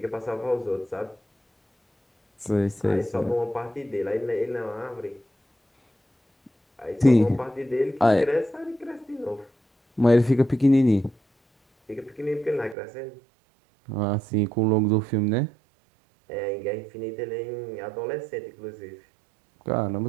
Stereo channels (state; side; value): drops out; left; at 12.8 s